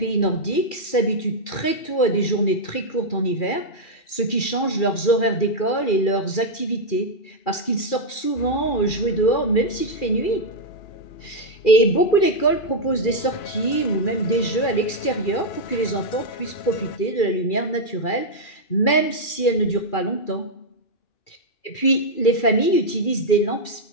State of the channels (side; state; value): right; late; 2.4 ms